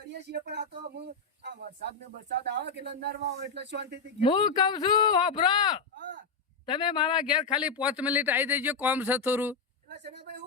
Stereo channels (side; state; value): right; quieter; 4.6 dB